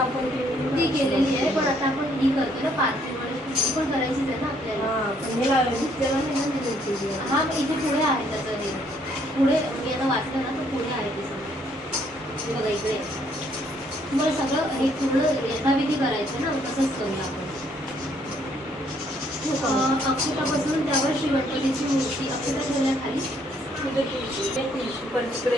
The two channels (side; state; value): both; normal; correlation 0.67